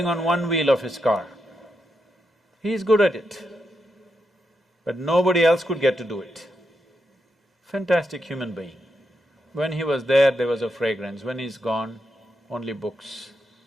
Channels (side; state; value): both; normal; correlation 0.83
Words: on one wheel of his car. He is good at it, but nobody else could get to do it. Fantastic human being. When he was there was a fragrance, when he's gone, only books,